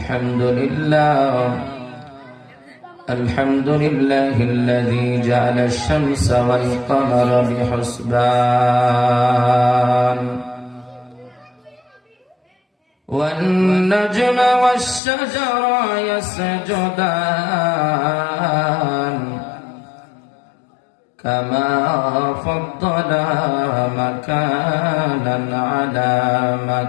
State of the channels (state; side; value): drops out; right; at 15.0 s